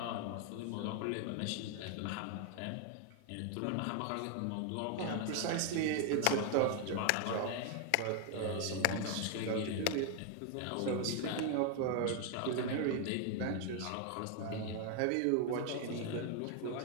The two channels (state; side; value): different; both; correlation 0.01